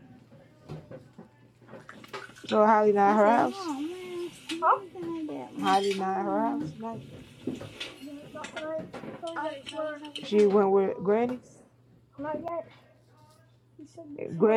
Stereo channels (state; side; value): identical; both; correlation 1.00